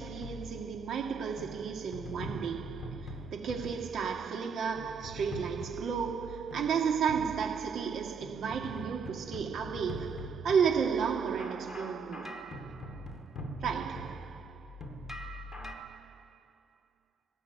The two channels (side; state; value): left; quieter; 5.7 dB